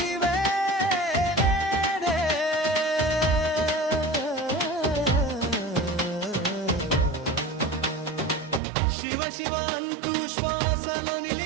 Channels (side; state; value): left; drops out; at 8.6 s